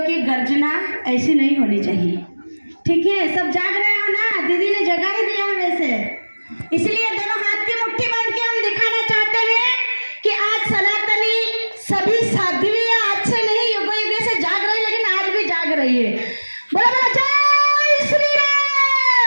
गर्जना ऐसी नहीं होनी चाहिए। ठीक है, सब जाग रहे हो ना? दीदी ने जगा ही दिया है वैसे, इसलिए दोनों हाथ की मुट्ठी बांध के हम दिखाना चाहते हैं कि आज सनातनी सभी साध्वियां आज से नहीं युगों युगों से जाग रही, लेकिन आज भी जाग रही है। बोला बोला जय श्री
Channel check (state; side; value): inverted; both; correlation -1.00